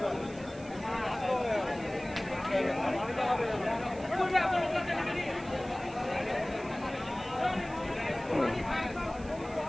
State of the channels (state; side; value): noise; right; hiss, 22 dB below the sound